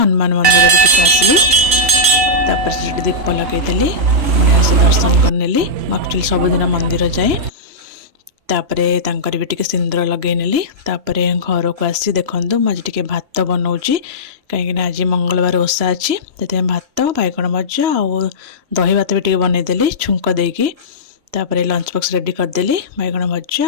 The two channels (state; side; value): late; left; 3.0 ms